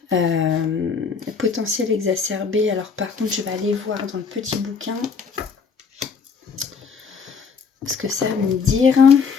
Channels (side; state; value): right; quieter; 5.6 dB